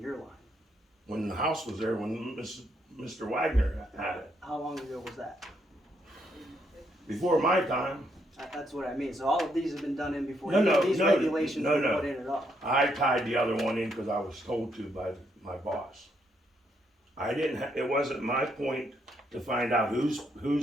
line? When the house was there, when Mr. Wagner had it, How long ago was that? before my time. That's what I mean. So all of these have been done in before No, any no, of these no, regulations no, were no. put in at all. I tied the other one in because I was told to by my boss. I didn't, it wasn't my point to find out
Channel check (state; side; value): normal; both; correlation 0.75